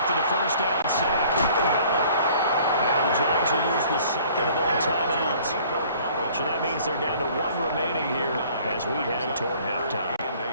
the first down sack. Allen. Now the Jags will use the second of their timeouts. So that means they're down to 1 remaining here as we head toward halftime.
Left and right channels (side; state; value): both; inverted; correlation -0.54